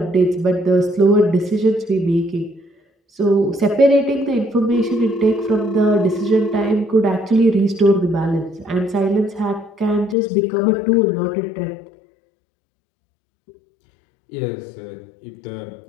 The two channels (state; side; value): drops out; right; at 10.2 s